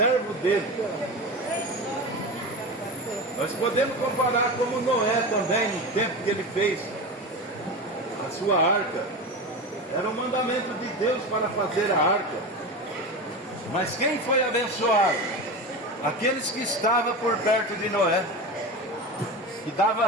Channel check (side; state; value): both; normal; correlation 0.25